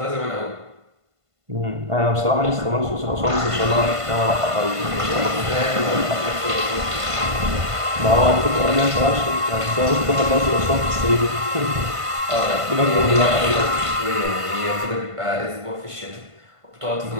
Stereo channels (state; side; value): late; left; 1.5 ms